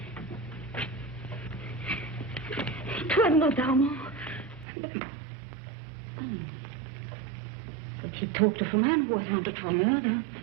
It was not Armand. But he talked of a man who was wanted for murder.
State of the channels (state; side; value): drops out; left; at 4.7 s